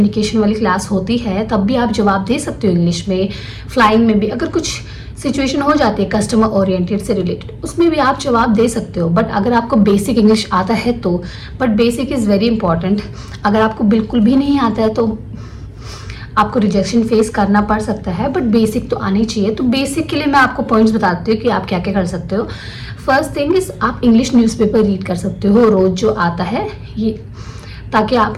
वाली क्लास होती है तब भी आप जवाब दे सकते हो इंग्लिश में। फ्लाइंग में भी अगर कुछ सिचुएशन हो जाती है कस्टमर ओरिएंटेड से रिलेटेड, उसमें भी आप जवाब दे सकते हो। बट अगर आपको बेसिक इंग्लिश आता है तो, but basic is very important. अगर आपको बिल्कुल भी नहीं आता है तो आपको रिजेक्शन फेस करना पड़ सकता है, बट बेसिक तो आनी चाहिए। तो बेसिक के लिए मैं आपको पॉइंट्स बताती हूँ कि आप क्या क्या कर सकते हो। फर्स्ट थिंग इज, आप इंग्लिश न्यूज़पेपर रीड कर सकते हो रोज़ जो आता है ये, ताकि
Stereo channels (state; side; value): identical; both; correlation 1.00